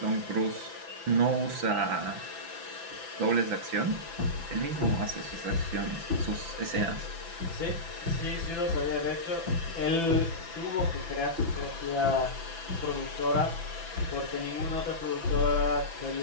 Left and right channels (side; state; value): left; late; 6.0 ms